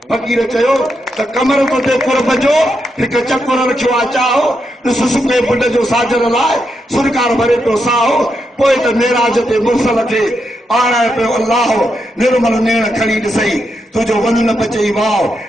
फ़कीर चयो त कमर तो ते कुर्ब जो हिकु चकुर रखियो आहे चाहो ॾिस सुके बुढ जो साजर लाइ सुरकार भरे पियो साहो पोइ त मेराज ते मुर्सल खे आणाए पियो अल्लाह निर्मल नेण खणी ॾिसई तुंहिंजो वञ न बचई वाओ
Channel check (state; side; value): normal; both; correlation 0.83